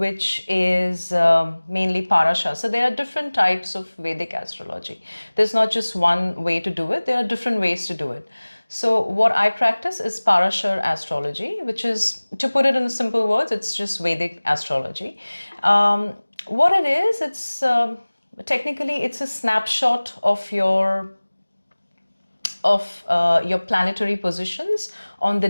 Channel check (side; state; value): both; inverted; correlation -1.00